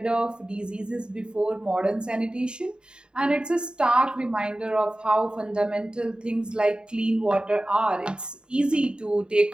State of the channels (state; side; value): late; left; 0.049 ms